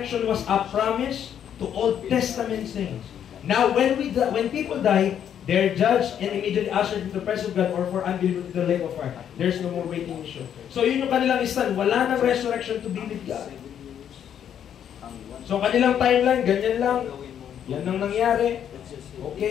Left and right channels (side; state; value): right; quieter; 9.3 dB